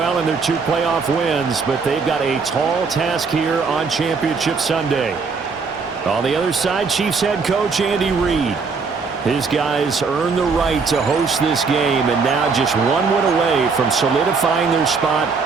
in their 2 playoff wins, but they've got a tall task here on Championship Sunday. On the other side, Chiefs head coach Andy Reid. His guys earned the right to host this game, and now just 1 win away from solidifying their spot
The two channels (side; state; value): left; quieter; 4.9 dB